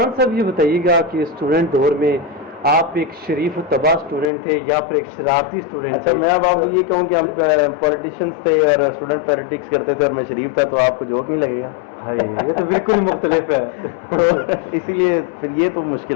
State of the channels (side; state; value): right; drops out; at 4.3 s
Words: صاحب یہ بتائیے گا کہ اسٹوڈنٹ دور میں آپ ایک شریف و تباہ اسٹوڈنٹ تھے یا پھر ایک شرارتی اسٹوڈنٹ اچھا تھے؟ میں اب آپ کو یہ کہوں کہ ہم پولیٹیشینس تھے اور اسٹوڈنٹ پالیٹکس کرتے تھے اور میں شریف تھا تو آپ کو جوک نہیں لگے گا. یہ تو بالکل مختلف ہے. تو اسی لیے پھر یہ تو